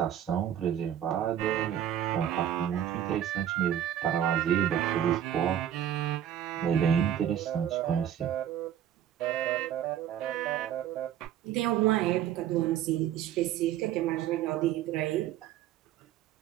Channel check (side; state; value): left; quieter; 10.5 dB